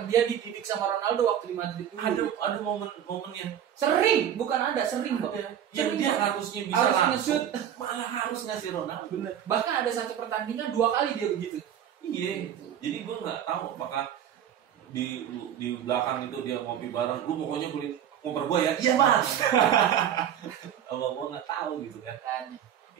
dia dididik sama Ronaldo waktu di Madrid dulu. Ada momen-momennya. Sering Bang. Yang dia harusnya bisa langsung, malah harus ngasih Ronaldo. Bener. Bahkan ada satu pertandingan 2 kali dia begitu. Iya. Jadi gue nggak tahu apakah di belakang itu dia ngopi bareng. Lu pokoknya kulit ngoper gue ya. Iya Mas. Kalau gue nggak tahu gitu kan.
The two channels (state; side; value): quieter; left; 9.8 dB